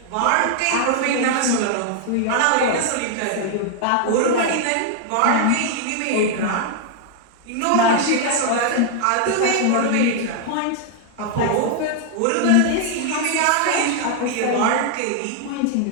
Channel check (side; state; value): both; different; correlation 0.00